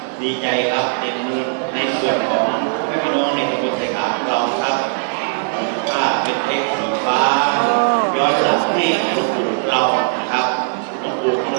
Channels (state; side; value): silent; left; 56 dB below the other